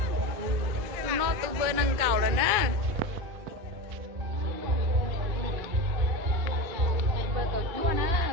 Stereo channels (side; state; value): left; late; 2.1 ms